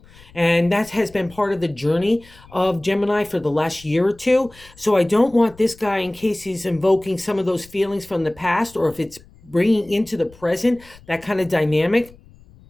And that has been part of the journey of Gemini for the last year or two. So I don't want this guy, in case he's invoking some of those feelings from the past, or if it's bringing into the present, that kind of dynamic.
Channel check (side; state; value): left; noise; rumble, 24 dB below the sound